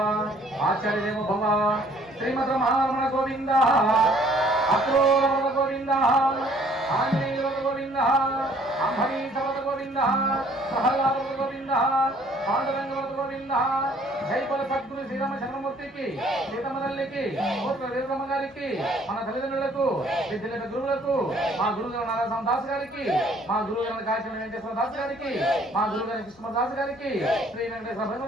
ఆచార్యదేవ భవ. శ్రీమద్ రమణ గోవింద అక్రూర గోవింద ఆంజనేయ గోవింద అంబరీష గోవింద ప్రహ్లాద గోవింద పాండురంగ గోవింద. జైపల సద్గురు శ్రీరామ చంద్రమూర్తికి సీతమ్మ తల్లికి కోట్ల వీరమ్మ గారికి మన తల్లిదండ్రులకు విద్యుల గురువులకు మా గురుగారు నారాయణ దాస్ గారికి మా గురుగారు కాశీ వెంకటేశ్వర దాస్ గారికి మా గురుగారు కృష్ణ దాస్ గారికి శ్రీ వెంకటేశ్వర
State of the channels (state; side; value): normal; both; correlation 0.60